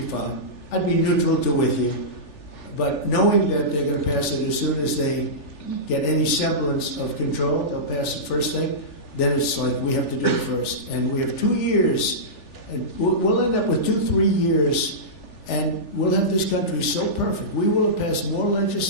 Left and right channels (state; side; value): late; right; 3.4 ms